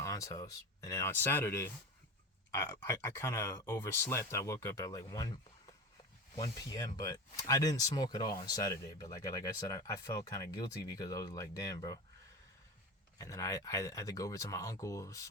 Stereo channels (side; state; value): both; normal; correlation 0.27